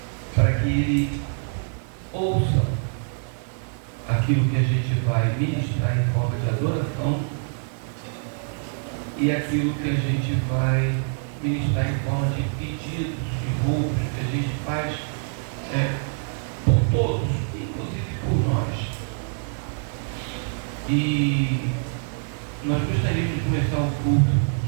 para que Ele ouça aquilo que a gente vai ministrar em forma de adoração e aquilo que a gente vai ministrar em forma de pedidos e roubos que a gente faz por todos, inclusive por nós. E nós gostaríamos de começar o culto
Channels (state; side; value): silent; left; digital silence